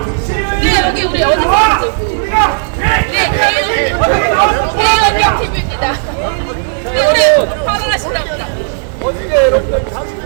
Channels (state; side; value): silent; left; digital silence